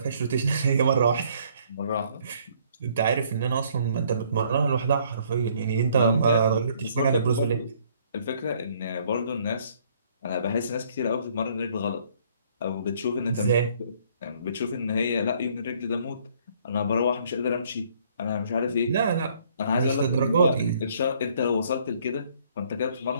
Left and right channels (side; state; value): both; inverted; correlation -0.63